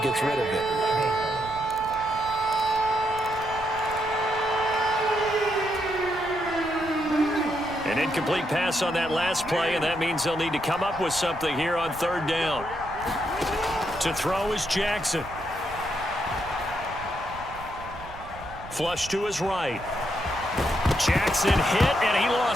rid of it. An incomplete pass on that last play, and that means they'll need to come up with something here on third down. To throw is Jackson. Flush to his right. Jackson hit, and he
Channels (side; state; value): right; noise; rumble, 16 dB below the sound